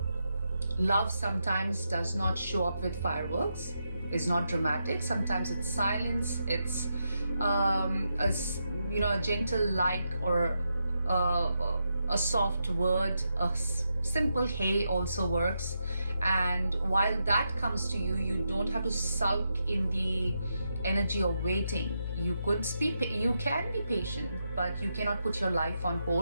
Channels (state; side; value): inverted; both; correlation -0.84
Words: love sometimes does not show up with fireworks. It's not dramatic. Sometimes it's silence. It's a gentle like, or a soft word. A simple hey also works. And while that comes to you, you don't have to sulk in the energy of waiting. You can be patient, but you cannot put your life on